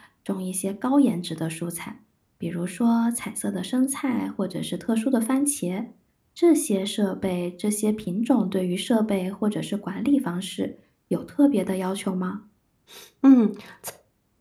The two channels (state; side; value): identical; both; correlation 1.00